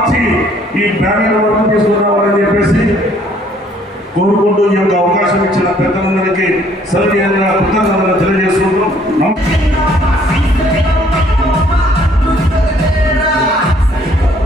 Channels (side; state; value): both; normal; correlation 0.62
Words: ఈ బ్యానర్ వరకు తీసుకురావాలని చెప్పేసి కోరుకుంటూ ఈ యొక్క అవకాశం ఇచ్చిన పెద్దలందరికీ సౌజన్యంగా కృతజ్ఞతలు తెలియజేస్తున్నారు.